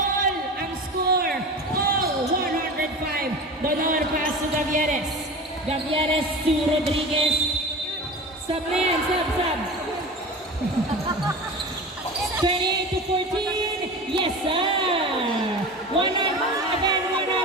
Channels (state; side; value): normal; both; correlation 0.32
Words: ang score. All 105. Donor pass to Gavieres. Gavieres to Rodriguez. Sub na yan, sub. 28 to 14. Yes, sir. 105.